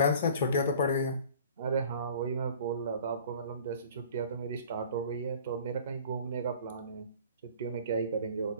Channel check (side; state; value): both; inverted; correlation -0.46